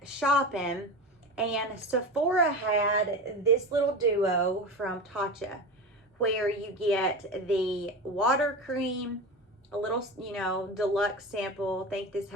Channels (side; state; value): both; normal; correlation 0.25